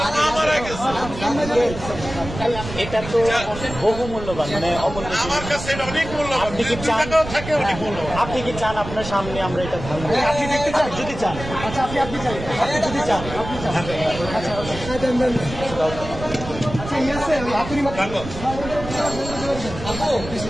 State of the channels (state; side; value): noise; right; rumble, 10 dB below the sound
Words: মা মারা গেছে। এটা তো বহু মূল্যবান, মানে আমার কাছে এটা অনেক মূল্যবান। আপনি কি চান থাকে অনেক মূল্যবান। আপনি কি চান আপনার সামনে আমরা এটা ভাঙবো? আপনি দেখতে চান? যদি চান, আচ্ছা আপনি চান, আপনি যদি চান, আপনি চান, আচ্ছা আচ্ছা ইয়ে আছে আপনি